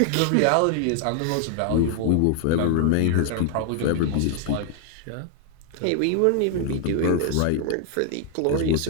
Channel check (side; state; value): both; different; correlation 0.00